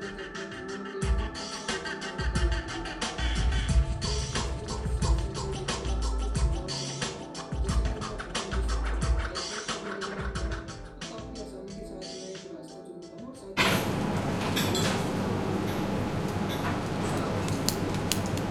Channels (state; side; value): identical; both; correlation 1.00